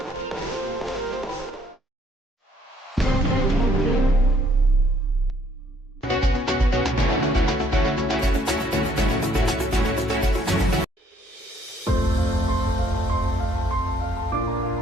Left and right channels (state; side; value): normal; both; correlation 0.65